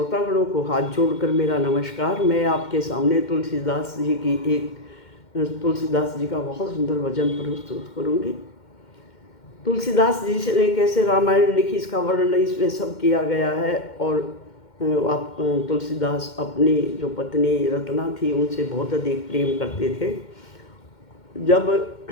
को हाथ जोड़कर मेरा नमस्कार। मैं आपके सामने तुलसीदास जी का बहुत सुंदर भजन प्रस्तुत करूंगी। तुलसीदास जी ने कैसे रामायण लिखी इसका वर्णन इसमें सब किया गया है। और आप तुलसीदास अपनी जो पत्नी रत्ना थी उनसे बहुत अधिक प्रेम करते थे। जब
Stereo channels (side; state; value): right; late; 2.1 ms